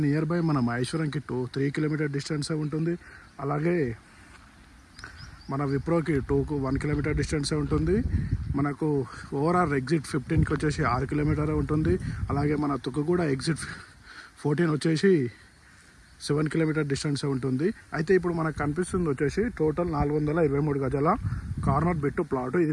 నియర్ బై మన మహేశ్వరంకి 3 కిలోమీటర్ డిస్టెన్సే ఉంటుంది. అలాగే మన విప్రోకి 1 కిలోమీటర్ డిస్టెన్సే ఉంటుంది. మనకు ఓవరాల్ ఎగ్జిట్ 15కి వచ్చేసి 6 కిలోమీటర్ ఉంటుంది. అలాగే మన తుక్కుగూడ ఎగ్జిట్ 14 వచ్చేసి 7 కిలోమీటర్ డిస్టెన్సే ఉంటుంది. అయితే ఇప్పుడు మనకు కనిపిస్తుంది వచ్చేసి టోటల్ 423 గజాల కార్నర్ బిట్టు ప్లాట్.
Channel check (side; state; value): both; identical; correlation 1.00